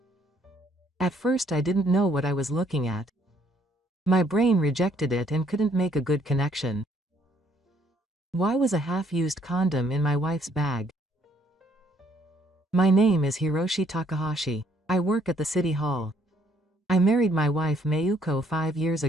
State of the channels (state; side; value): normal; both; correlation 0.67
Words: At first I didn't know what I was looking at. My brain rejected it and couldn't make a good connection. Why was a half-used condom in my wife's bag? My name is Hiroshi Takahashi. I work at the city hall. I married my wife Mayuko 5 years